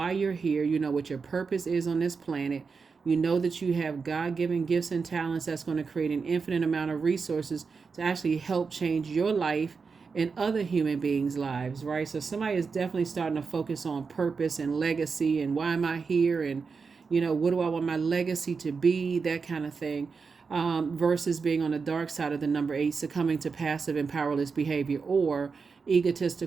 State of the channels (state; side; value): quieter; left; 5.1 dB